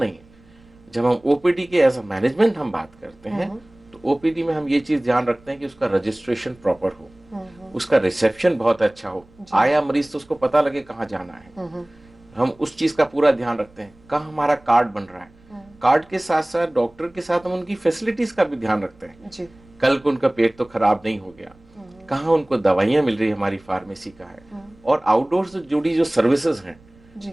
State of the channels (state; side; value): noise; right; rumble, 28 dB below the sound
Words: है। जब हम ओपीडी के एज अ मैनेजमेंट हम बात करते हैं तो ओपीडी में हम ये चीज ध्यान रखते हैं कि उसका रजिस्ट्रेशन प्रॉपर हो, उसका रिसेप्शन बहुत अच्छा हो, आया मरीज तो उसको पता लगे कहाँ जाना है, हम उस चीज का पूरा ध्यान रखते हैं। कहाँ हमारा कार्ड बन रहा है, कार्ड के साथ साथ डॉक्टर के साथ हम उनकी फैसिलिटीज का भी ध्यान रखते हैं। कल को उनका पेट तो खराब नहीं हो गया, कहाँ उनको दवाइयाँ मिल रही हमारी फार्मेसी का है। और आउटडोर से जुड़ी जो सर्विसेज हैं,